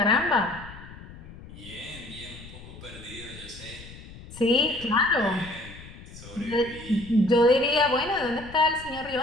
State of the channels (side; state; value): left; noise; rumble, 16 dB below the sound